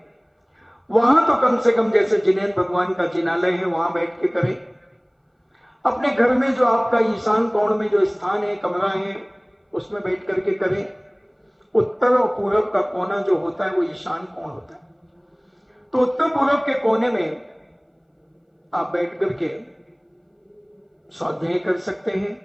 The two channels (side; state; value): both; identical; correlation 1.00